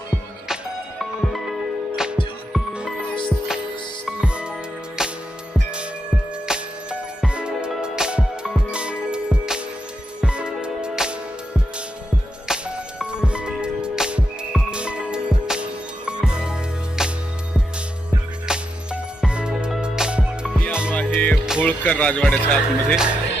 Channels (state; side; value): normal; both; correlation 0.85